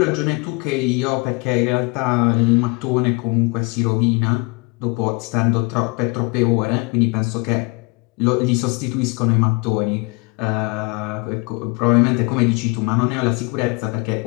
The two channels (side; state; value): right; quieter; 29.2 dB